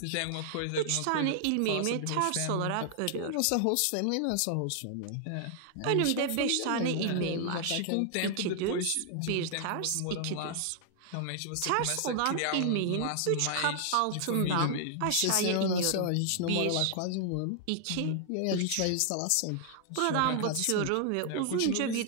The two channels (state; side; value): different; both; correlation -0.01